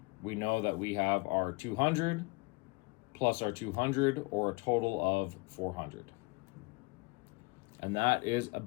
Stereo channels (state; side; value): quieter; right; 27.6 dB